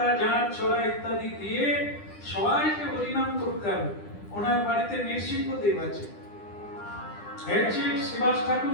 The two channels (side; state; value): right; late; 10 ms